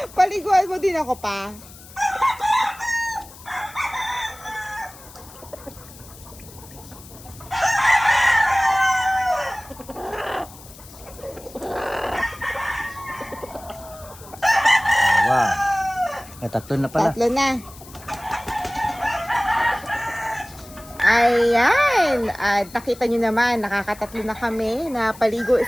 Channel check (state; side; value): noise; left; hiss, 20 dB below the sound